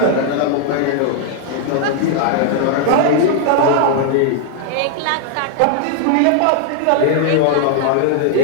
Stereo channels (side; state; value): both; different; correlation 0.00